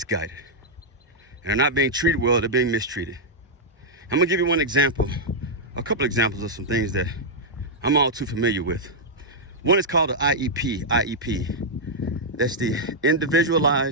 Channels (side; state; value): both; normal; correlation -0.06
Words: And they're not being treated well, they're being mistreated. I'm gonna give you one example, a couple examples of some things that I'm all too familiar with. One is called the IEP. That's the